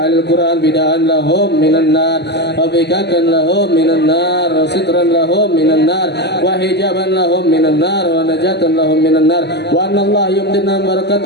القرآن بداء لهم من النار وفكاكا لهم من النار وسترا لهم من النار وحجابا لهم من النار ونجاة لهم من النار وأن الله يمدنا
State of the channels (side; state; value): right; late; 0.49 ms